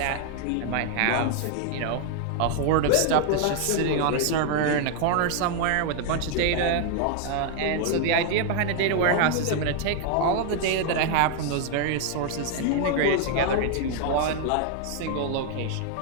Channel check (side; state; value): both; different; correlation 0.00